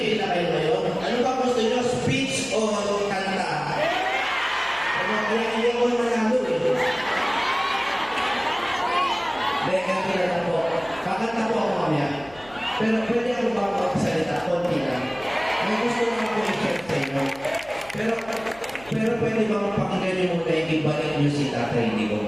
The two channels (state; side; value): noise; left; hum, 23 dB below the sound